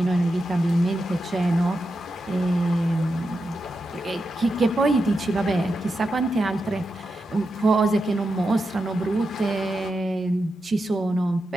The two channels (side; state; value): both; normal; correlation 0.88